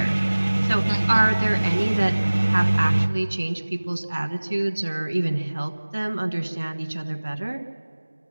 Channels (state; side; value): inverted; both; correlation -1.00